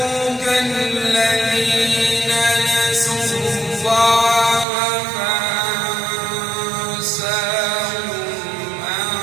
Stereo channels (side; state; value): left; drops out; at 4.7 s